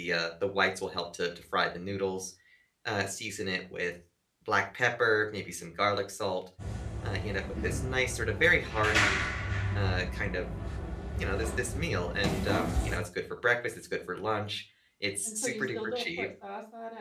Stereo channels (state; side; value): identical; both; correlation 1.00